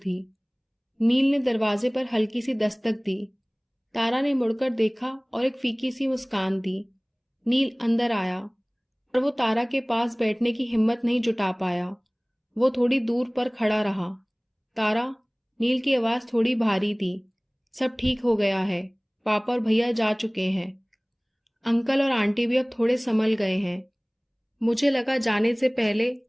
नील ने दरवाजे पर हल्की सी दस्तक दी। तारा ने मुड़कर देखा और एक फीकी सी मुस्कान दी। नील अंदर आया, पर वो तारा के पास बैठने की हिम्मत नहीं जुटा पाया। वो थोड़ी दूर पर खड़ा रहा। तारा, नील की आवाज थोड़ी भारी थी। सब ठीक हो गया है। पापा और भैया जा चुके हैं। अंकल और आंटी भी अब थोड़े संभल गए हैं। मुझे लगा जाने से पहले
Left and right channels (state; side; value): identical; both; correlation 1.00